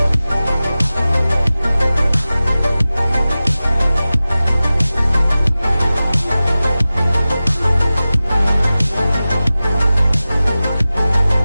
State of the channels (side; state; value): both; inverted; correlation -0.96